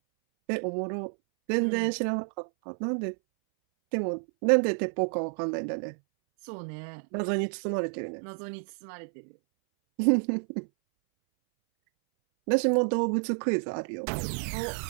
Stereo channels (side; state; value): left; silent; 58 dB below the other